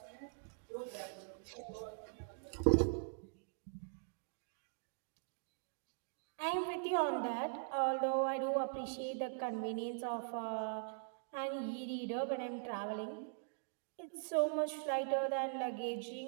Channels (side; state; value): left; silent; digital silence